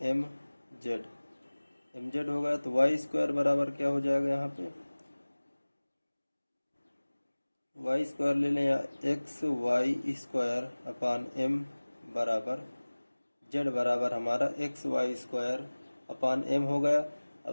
mz हो गया। तो वाई स्क्वायर बराबर क्या हो जाएगा, यहाँ पे वाई स्क्वायर ले लें, या X Y square upon m बराबर z बराबर हमारा X Y square upon m हो गया। अब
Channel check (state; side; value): inverted; both; correlation -1.00